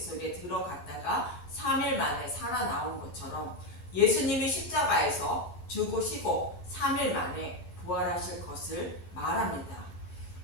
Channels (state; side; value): late; right; 12 ms